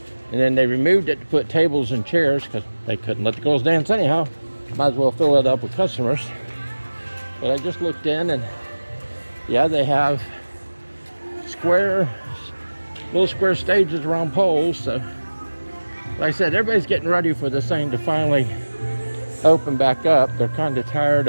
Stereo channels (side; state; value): both; inverted; correlation -1.00